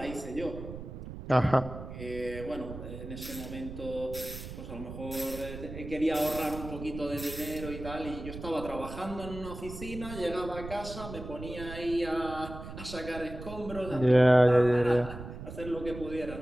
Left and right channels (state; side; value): noise; right; rumble, 10 dB below the sound